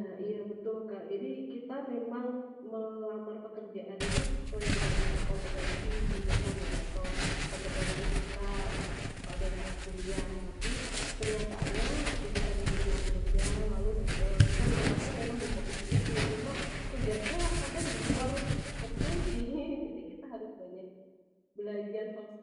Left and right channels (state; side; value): identical; both; correlation 1.00